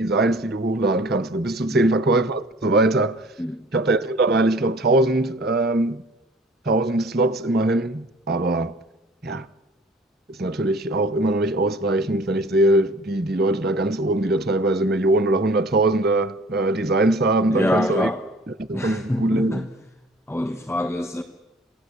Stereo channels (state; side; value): normal; both; correlation 0.49